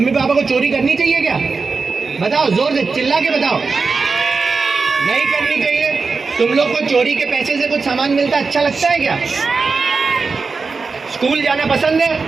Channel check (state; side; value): quieter; left; 4.5 dB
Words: पापा को चोरी करनी चाहिए क्या? बताओ, जोर से चिल्ला के बताओ। नहीं करनी चाहिए। तुम लोग को चोरी के पैसे से कुछ सामान मिलता अच्छा लगता है क्या? स्कूल जाना पसंद है?